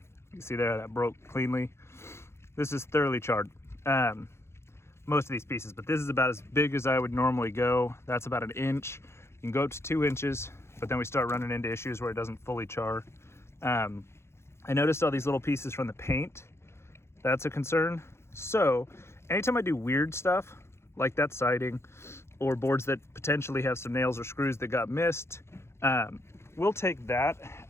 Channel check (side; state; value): right; late; 0.13 ms